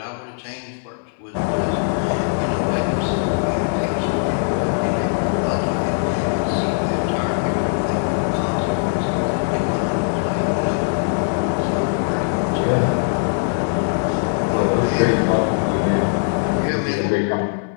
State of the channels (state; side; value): silent; right; 65 dB below the other